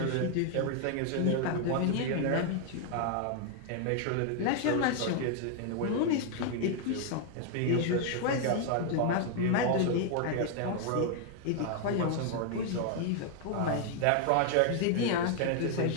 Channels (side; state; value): both; different; correlation 0.00